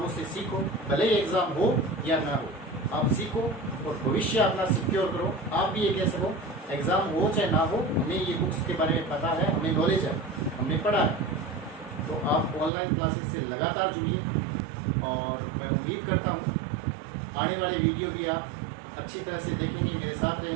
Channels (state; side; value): drops out; left; at 12.7 s